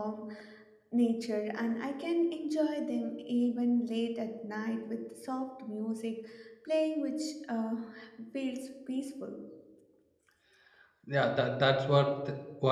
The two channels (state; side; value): identical; both; correlation 1.00